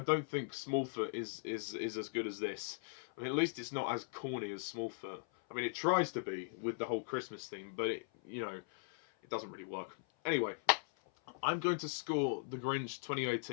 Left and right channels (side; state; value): right; silent; 52 dB below the other